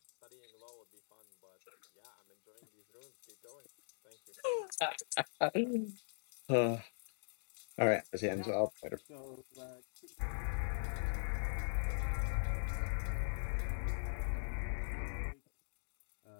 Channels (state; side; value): silent; right; digital silence